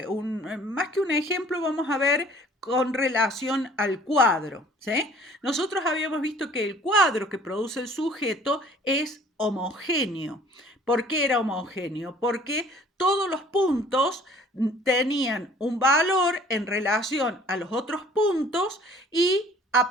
que un ejemplo, vamos a ver con relación al cuadro, ¿sí? Nosotros habíamos visto que el cuadro que produce el sujeto es homogéneo. ¿Por qué era homogéneo? Porque todos los puntos tenían un valor en relación a los otros puntos y a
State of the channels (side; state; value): both; normal; correlation 0.52